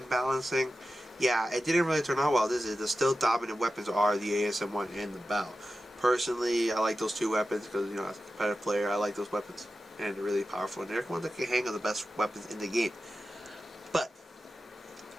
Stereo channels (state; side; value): normal; both; correlation 0.93